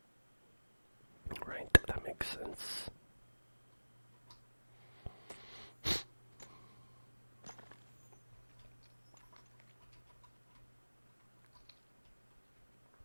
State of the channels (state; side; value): inverted; both; correlation -1.00